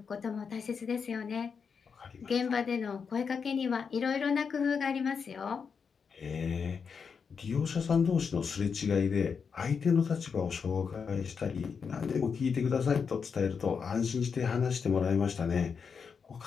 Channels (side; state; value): right; quieter; 6.0 dB